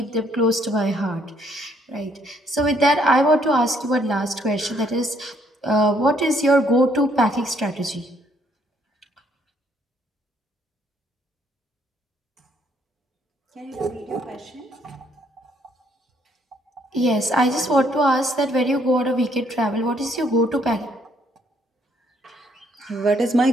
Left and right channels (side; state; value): both; normal; correlation 0.68